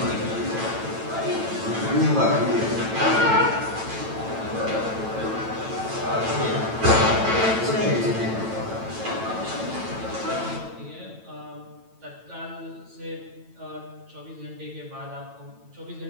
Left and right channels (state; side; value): late; left; 9.0 ms